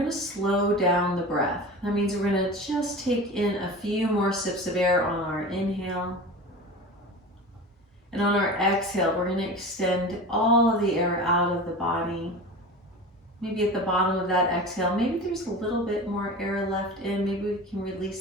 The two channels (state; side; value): normal; both; correlation 0.32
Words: to slow down the breath. That means we're going to just take in a few more sips of air on our inhale. And on our exhale, we're going to extend all of the air out of the body. Maybe at the bottom of that exhale, maybe there's a little bit more air left in. Maybe we can